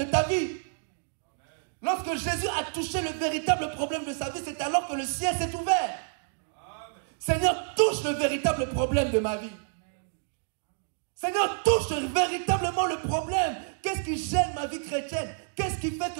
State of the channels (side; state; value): left; silent; digital silence